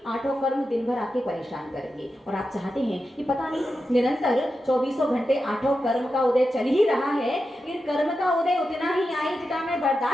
8 कर्म दिन भर आपके परेशान करेंगे। और आप चाहते हैं कि पता नहीं निरंतर 24 घंटे 8 कर्म का उदय चल ही रहा है, लेकिन कर्म का उदय उतना ही आए जितना मैं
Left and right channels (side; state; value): both; normal; correlation 0.89